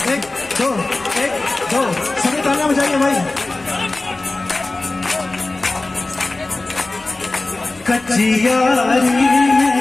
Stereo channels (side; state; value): right; quieter; 3.1 dB